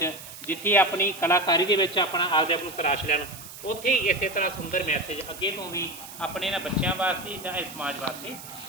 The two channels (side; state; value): right; noise; hiss, 14 dB below the sound